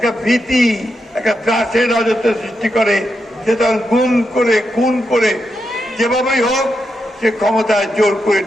ভীতি, একটা ত্রাসের রাজত্ব সৃষ্টি করে, সে তখন গুম করে, খুন করে, যেভাবেই হোক সে ক্ষমতায় জোর করে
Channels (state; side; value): normal; both; correlation 0.85